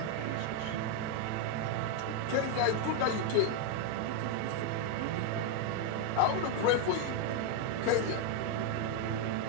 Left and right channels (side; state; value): both; different; correlation 0.01